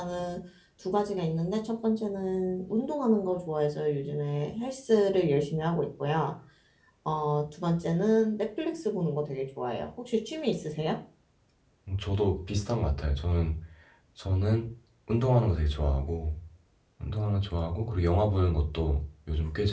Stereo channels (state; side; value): identical; both; correlation 1.00